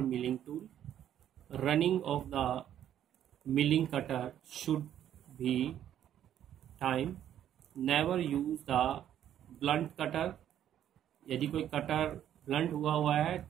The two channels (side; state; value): left; quieter; 10.7 dB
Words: milling tool. Running of the milling cutter should be time. Never use the blunt cutter. यदि कोई cutter blunt हुआ है,